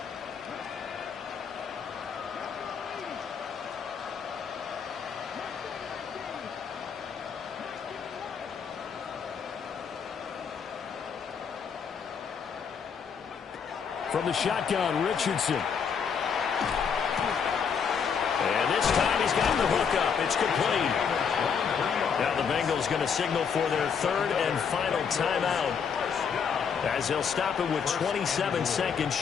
From the shotgun, Richardson. And this time he's got the hook up. It's complete. Now the Bengals going to signal for their 3rd and final timeout as they'll stop it with 27 seconds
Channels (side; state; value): right; quieter; 6.7 dB